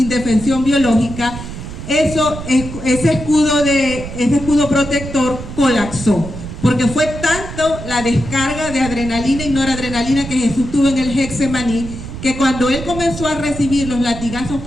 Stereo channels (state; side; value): noise; right; rumble, 10 dB below the sound